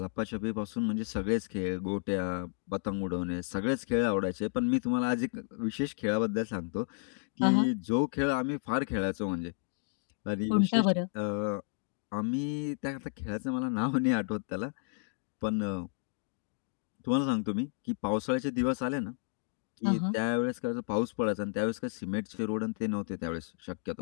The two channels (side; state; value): right; silent; 56 dB below the other